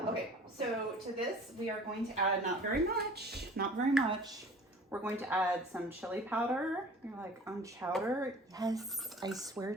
Okay, so to this we are going to add not very much. We're going to add some chili powder. You're like, on chowder? Yes, I swear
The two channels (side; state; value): both; normal; correlation 0.45